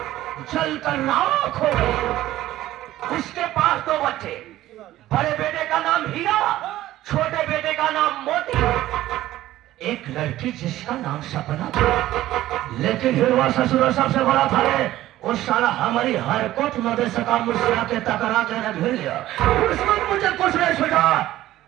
चल कर राख हो गई। उसके पास 2 बच्चे, बड़े बेटे का नाम हीरा, छोटे बेटे का नाम मोती, एक लड़की जिसका नाम सपना था। लेकिन हिरवा ससुर सबसे बड़ा था रे, उस साला हमारी हरकत न दे सका, मुझसे आके टकरा के न घेर लिया। उस वक्त मुझे कुछ नहीं छूटा।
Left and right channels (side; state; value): left; quieter; 14.8 dB